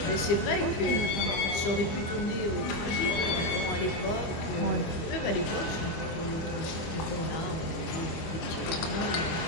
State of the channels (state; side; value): late; right; 25 ms